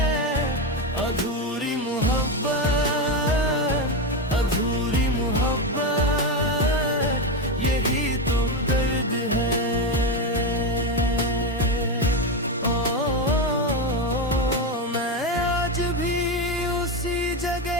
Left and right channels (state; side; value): normal; both; correlation 0.12